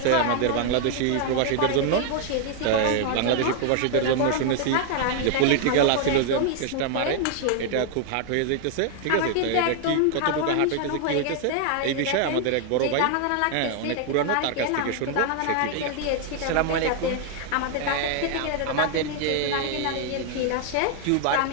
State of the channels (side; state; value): both; different; correlation 0.00